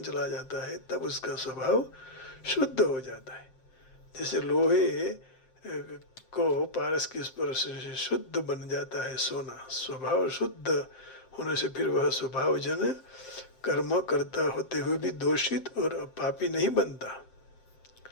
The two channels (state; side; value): late; right; 7.6 ms